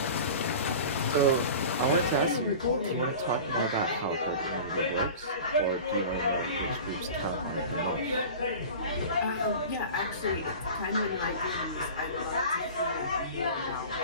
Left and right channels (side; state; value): both; inverted; correlation -0.36